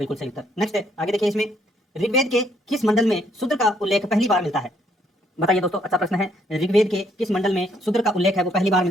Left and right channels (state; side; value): normal; both; correlation 0.69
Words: सही उत्तर। नेक्स्ट है, आगे देखिए इसमें ऋग्वेद के किस मंडल में शूद्र का उल्लेख पहली बार मिलता है? बताइए दोस्तों, अच्छा प्रश्न है। ऋग्वेद के किस मंडल में शूद्र का उल्लेख है वो पहली बार